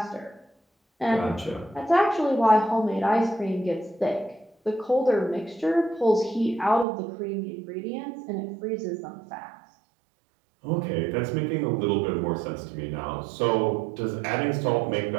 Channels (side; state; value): left; drops out; at 6.9 s